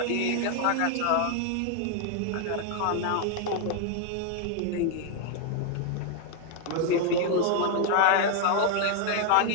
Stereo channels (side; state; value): both; different; correlation 0.00